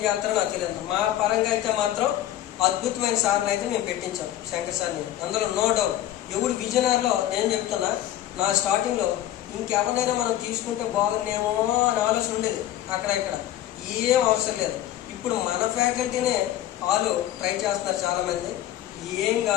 చేస్తారో నాకు తెలియదు. మా పరంగా అయితే మాత్రం అద్భుతమైన సార్లు అయితే మేము పెట్టించాం శంకర్ సార్ని, అందులో నో డౌట్. ఎవడు విజయనగరంలో నేను చెప్తున్నా, నా స్టార్టింగ్లో ఇంకెవరినైనా మనం తీసుకుంటే బాగుందేమో అని ఆలోచన ఉండేది. అక్కడ ఇక్కడ ఏం అవసరం లేదు. ఇప్పుడు మన ఫ్యాకల్టీనే వాళ్ళు ట్రై చేస్తున్నారు చాలామంది. ఏం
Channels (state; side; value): quieter; right; 13.0 dB